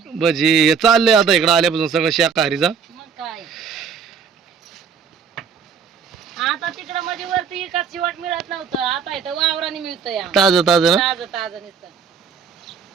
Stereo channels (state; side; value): quieter; left; 6.4 dB